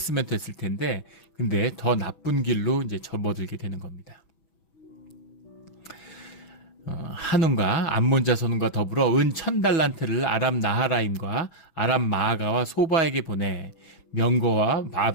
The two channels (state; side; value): late; right; 6.1 ms